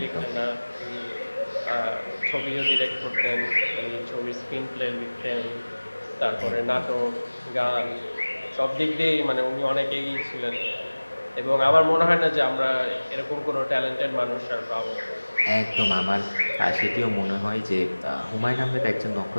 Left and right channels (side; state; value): both; inverted; correlation -1.00